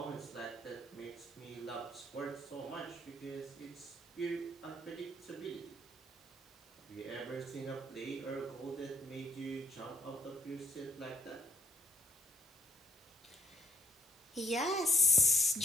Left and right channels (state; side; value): normal; both; correlation 0.68